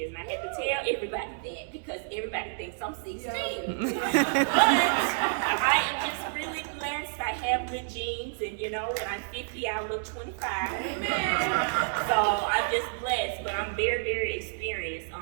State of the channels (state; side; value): silent; left; digital silence